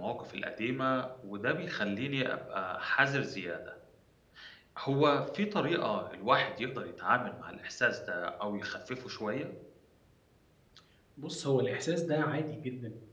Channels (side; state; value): both; identical; correlation 1.00